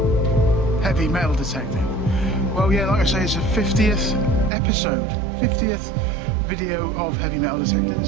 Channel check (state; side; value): drops out; left; at 4.5 s